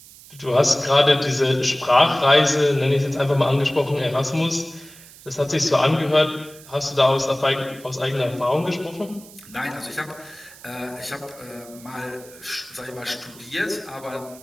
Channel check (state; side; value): noise; right; hiss, 21 dB below the sound